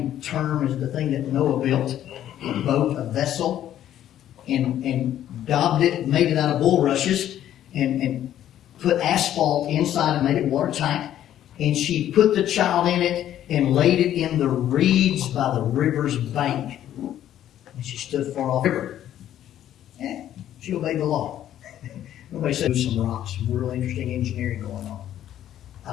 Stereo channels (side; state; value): right; quieter; 11.6 dB